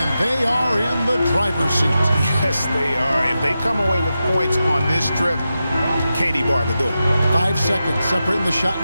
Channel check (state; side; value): inverted; both; correlation -0.90